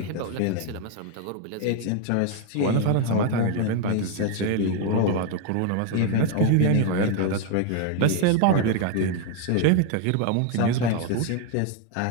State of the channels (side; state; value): both; different; correlation 0.01